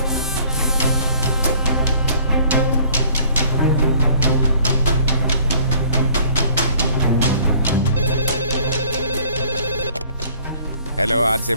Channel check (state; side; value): inverted; both; correlation -0.55